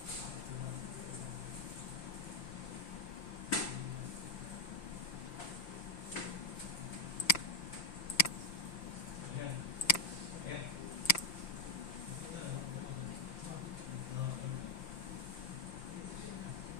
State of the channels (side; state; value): right; late; 5.8 ms